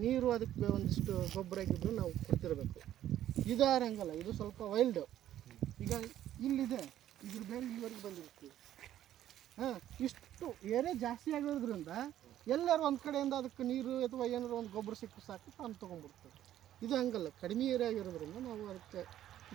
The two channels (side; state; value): left; quieter; 12.1 dB